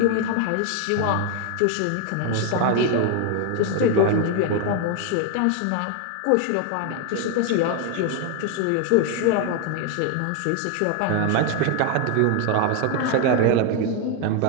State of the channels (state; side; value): different; both; correlation 0.01